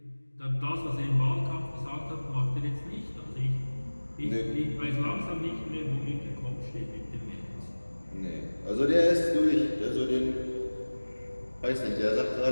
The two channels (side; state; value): both; inverted; correlation -1.00